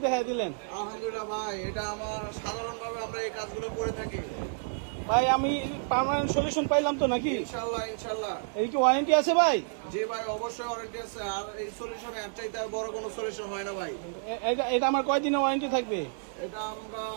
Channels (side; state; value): left; silent; digital silence